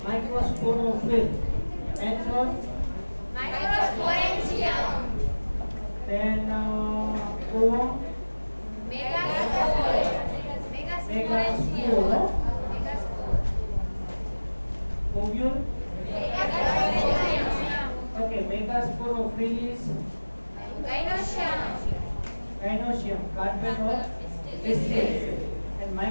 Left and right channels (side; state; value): both; inverted; correlation -1.00